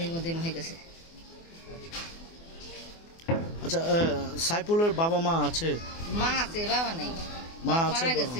মধ্যে হয়ে গেছে। আচ্ছা, সাইফুলের বাবা মা আছে? মা আছে, বাবা নেই। মা আছে, মারা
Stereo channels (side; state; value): right; late; 24 ms